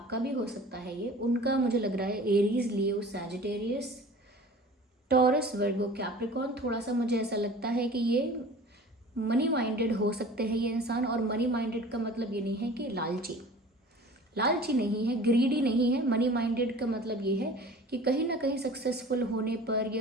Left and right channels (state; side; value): normal; both; correlation 0.43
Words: भी हो सकता है ये। उनका मुझे लग रहा है एरीज, लियो, सैजिटेरियस, टॉरस, वर्गो, कैप्रिकॉर्न। थोड़ा सा मुझे ऐसा लगता है कि ये मनी माइंडेड हो सकते हैं ये इंसान। और मनी माइंडेड का मतलब ये नहीं है कि लालची, लालची नहीं है, ग्रीडी नहीं है। मनी माइंडेड का मतलब ये है कि कहीं ना कहीं सक्सेसफुल होने पर